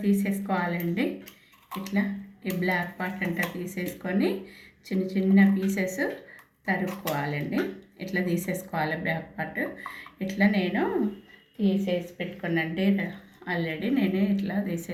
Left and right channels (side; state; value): both; identical; correlation 1.00